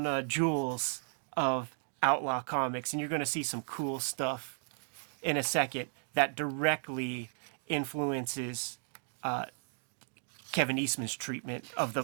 jewels of Outlaw Comics. And you're going to see some cool stuff in a second that directly influences Kevin Eastman's treatment of the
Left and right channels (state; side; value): silent; left; 55 dB below the other